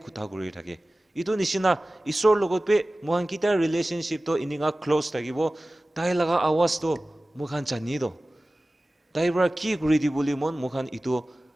কথা কৰি থাকে ইটো নিচিনা ঈশ্বৰ লগত পে মখান কিতিয়া ৰিলেশনশ্বিপটো ইনিগা ক্লোজ থাকিব তাই লাগা আৱাজটো মখান জানি দো তাই পৰা কি কৰি দি বুলি মখান ইটো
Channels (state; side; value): normal; both; correlation 0.97